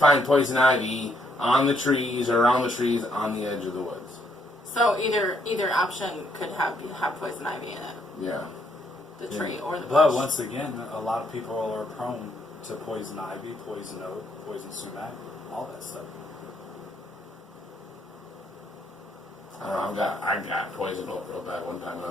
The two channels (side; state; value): both; normal; correlation 0.72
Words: poison ivy on the trees or around the trees on the edge of the woods. So either option could have poison ivy in it. Yeah. The tree or the bush. But once again, a lot of people are prone to poison ivy, poison oak, poison sumac, all that stuff. I don't know, I got poison oak real bad one time when I